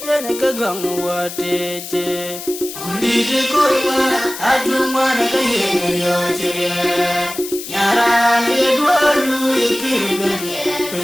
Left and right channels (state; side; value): noise; left; hiss, 10 dB below the sound